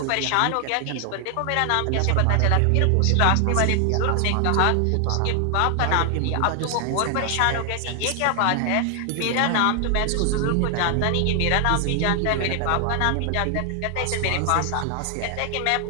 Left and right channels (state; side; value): different; both; correlation 0.00